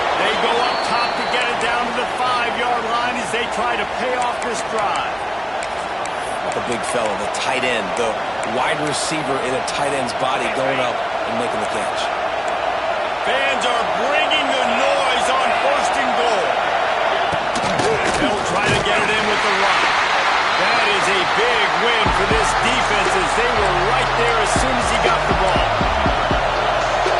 They go up top to get it down to the 5-yard line as they try to pay off this drive. The big fella, the tight end, the wide receiver in a tight end's body going up and making the catch. Fans are bringing the noise on 1st and goal. They'll try to get it in with the run. That is a big win for this defense as they were right there as soon as he got the ball.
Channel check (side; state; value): both; identical; correlation 1.00